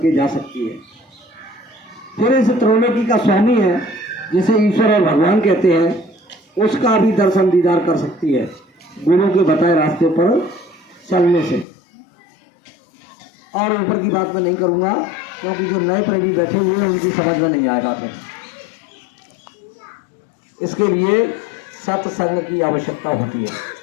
जा सकती है। फिर इस त्रैलोकी का स्वामी है, जिसे ईश्वर और भगवान कहते हैं, उसका भी दर्शन दीदार कर सकती है गुरु के बताए रास्ते पर चलने से। और ऊपर की बात मैं नहीं करूँगा, क्योंकि जो नए प्रेमी बैठे हुए हैं उनकी समझ में नहीं आएगा। फिर इसके लिए सत्संग की आवश्यकता होती है।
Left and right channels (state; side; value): drops out; right; at 11.7 s